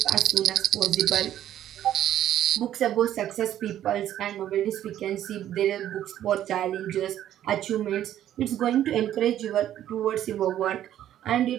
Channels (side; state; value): left; quieter; 11.7 dB